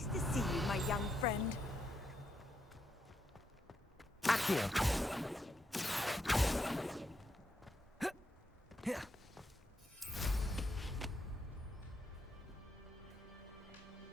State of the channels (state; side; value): normal; both; correlation 0.80